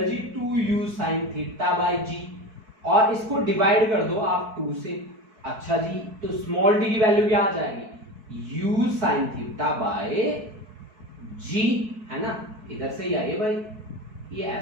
जी 2u sin theta by g, और इसको डिवाइड कर दो आप 2 से, अच्छा जी, तो स्मॉल t की वैल्यू क्या आ जाएगी, u sin theta by g, है ना, इधर से ही आइए भाई, ये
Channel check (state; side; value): late; left; 4.6 ms